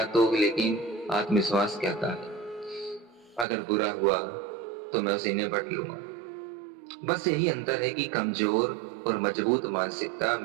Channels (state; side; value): drops out; left; at 3.5 s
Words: तो, लेकिन आत्मविश्वास कहता है अगर बुरा हुआ तो मैं उसे निपट लूंगा। बस यही अंतर है कि कमजोर और मजबूत मानसिकता